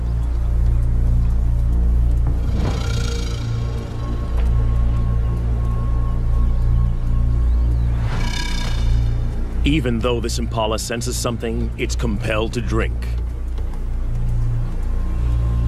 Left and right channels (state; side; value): identical; both; correlation 1.00